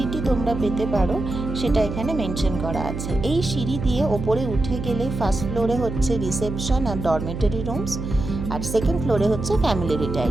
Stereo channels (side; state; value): right; noise; hum, 6 dB below the sound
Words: তোমরা পেতে পারো সেটা এখানে মেনশন করা আছে। এই সিঁড়ি দিয়ে ওপরে উঠে গেলে ফার্স্ট ফ্লোরে হচ্ছে রিসেপশন আর ডরমেটরি রুমস, আর সেকেন্ড ফ্লোরে হচ্ছে ফ্যামিলি